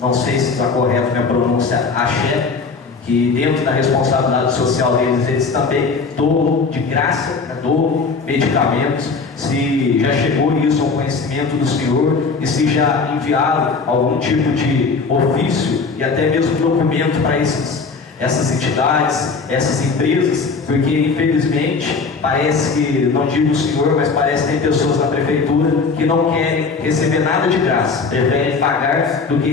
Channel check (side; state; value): right; quieter; 4.6 dB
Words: sei se está correto minha pronúncia, Axé, que dentro da responsabilidade social deles, eles também doam de graça, doam medicamentos. Se já chegou isso ao conhecimento do senhor e se já enviaram algum tipo de ofício e até mesmo documento para essas entidades, essas empresas, porque infelizmente parece que, não digo o senhor, mas parece que tem pessoas na prefeitura que não querem receber nada de graça, preferem pagar do que